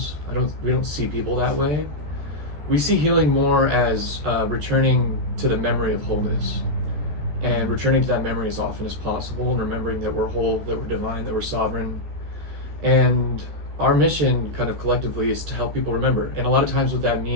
We don't see people that way. We see healing more as returning to the memory of wholeness. And returning to that memory as often as possible, and remembering that we're whole, that we're divine, that we're sovereign. And our mission kind of collectively is to help people remember. And a lot of times what that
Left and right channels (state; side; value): late; left; 14 ms